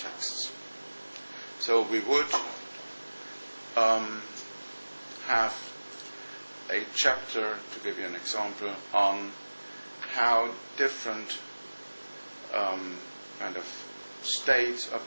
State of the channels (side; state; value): both; inverted; correlation -1.00